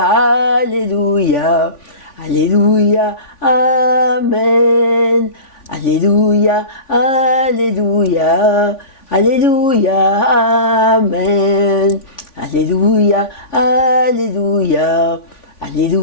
Alléluia, Alléluia, Amen. Alléluia, Alléluia, Alléluia, Amen. Alléluia, Alléluia,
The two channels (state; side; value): late; right; 3.5 ms